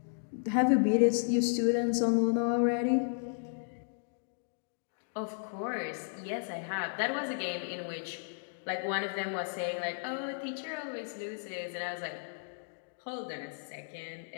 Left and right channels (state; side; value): silent; right; digital silence